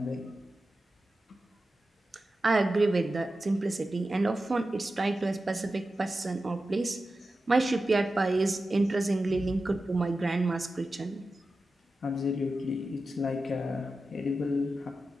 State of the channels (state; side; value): normal; both; correlation 0.92